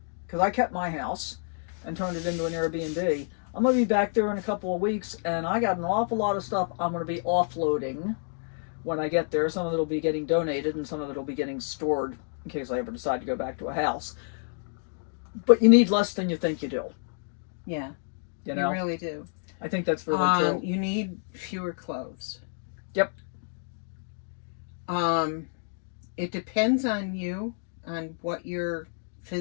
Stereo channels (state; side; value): silent; right; digital silence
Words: because I kept my house and turned it into an Airbnb. I'm going to be back there in a couple of weeks, and I got an awful lot of stuff I'm going to be offloading when I get there. Some of it will be getting donated, and some of it will be getting stored in case I ever decide to go back to a house. But you need less than you think you do. Yeah, you really do. I think that's really true. You need fewer clothes. Yep. It depends on you, on what your